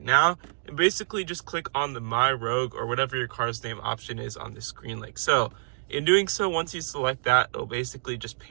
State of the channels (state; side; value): silent; left; digital silence